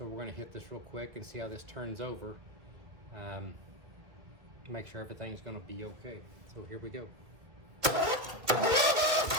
we're going to hit this real quick and see how this turns over. Make sure everything's going to be okay. So here we go.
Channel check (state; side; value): late; left; 2.1 ms